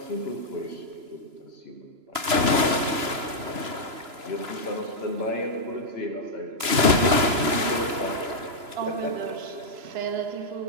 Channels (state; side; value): late; left; 3.0 ms